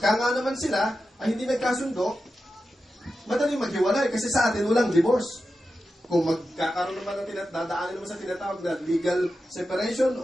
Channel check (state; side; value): normal; both; correlation 0.91